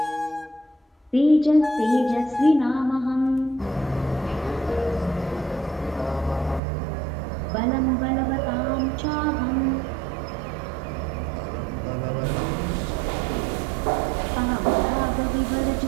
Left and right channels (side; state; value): left; drops out; at 6.6 s